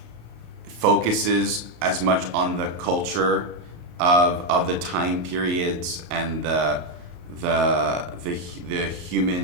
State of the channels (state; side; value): late; left; 34 ms